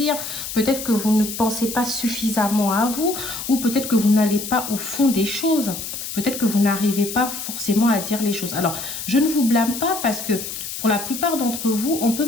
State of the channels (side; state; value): left; noise; hiss, 7 dB below the sound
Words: Peut-être que vous ne pensez pas suffisamment à vous. Ou peut-être que vous n'allez pas au fond des choses. Peut-être que vous n'arrivez pas forcément à dire les choses. Alors, je ne vous blâme pas parce que pour la plupart d'entre vous, on peut